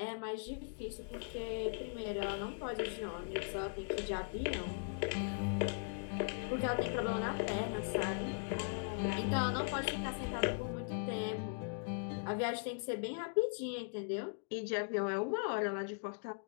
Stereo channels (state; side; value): silent; right; digital silence